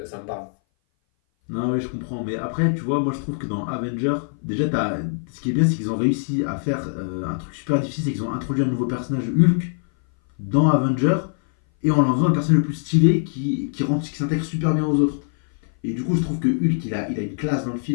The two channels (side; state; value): right; silent; 58 dB below the other